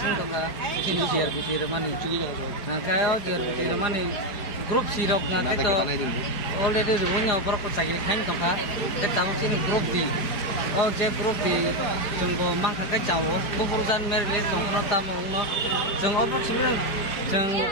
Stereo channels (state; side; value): late; right; 5.0 ms